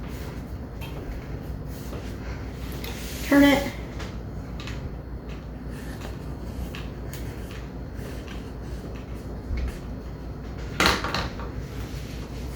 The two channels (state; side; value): identical; both; correlation 1.00